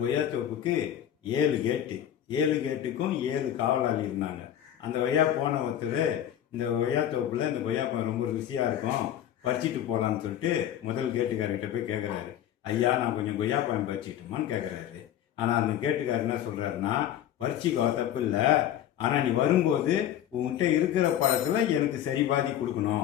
கொய்யாத்தோப்புக்கு 7 கேட்டு, 7 கேட்டுக்கும் 7 காவலாளி இருந்தாங்க. அந்த கொய்யா போன ஒருத்தர் இந்த கொய்யாத்தோப்புல இந்த கொய்யாப்பழம் ரொம்ப ருசியா இருக்கும், பறிச்சிட்டு போகலான்னு சொல்லிட்டு முதல் கேட்டுக்காரர்கிட்ட போய் கேட்குறாரு. ஐயா, நான் கொஞ்சம் கொய்யாப்பழம் பறிச்சிட்டுமான்னு கேட்குறாரு. ஆனால் அந்த கேட்டுக்காரர் என்ன சொல்றாருன்னா, பறிச்சிக்கோ, தப்பு இல்லை, ஆனால் நீ வரும்போது உங்ககிட்ட இருக்கிற பழத்தில் எனக்கு சரி பாதி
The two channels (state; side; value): quieter; right; 11.0 dB